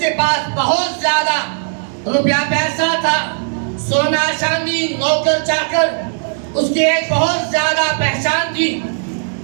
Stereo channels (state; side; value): silent; left; digital silence